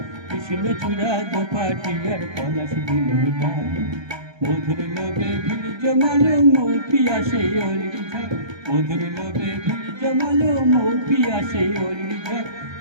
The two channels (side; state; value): left; late; 1.3 ms